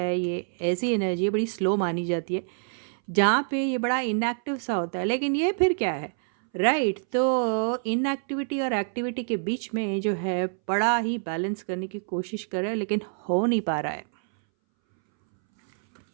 ये ऐसी एनर्जी बड़ी स्लो मानी जाती है जहाँ पे ये बड़ा इनएक्टिव सा होता है, लेकिन ये फिर क्या है, राइट। तो इनएक्टिविटी और एक्टिविटी के बीच में जो है बड़ा ही बैलेंस करने की कोशिश कर रहे हैं, लेकिन हो नहीं पा रहा है।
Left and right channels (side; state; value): left; silent; 61 dB below the other